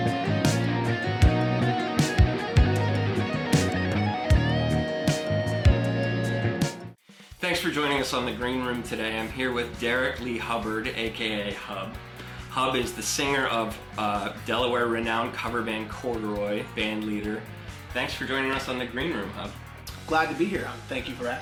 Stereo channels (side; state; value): both; identical; correlation 1.00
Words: Thanks for joining us on the Green Room today. I'm here with Derek Lee Hubbard, aka Hub. Hub is the singer of Delaware renowned cover band Corduroy, band leader. Thanks for joining us on the Green Room, Hub. Glad to be here. Thank you for